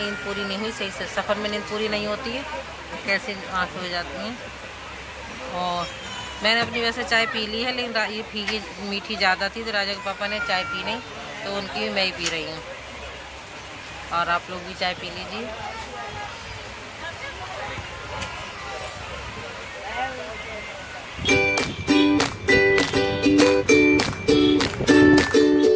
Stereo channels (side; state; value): both; identical; correlation 1.00